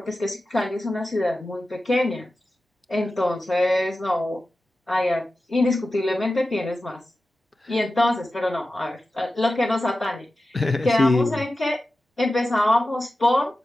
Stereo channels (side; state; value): both; normal; correlation 0.94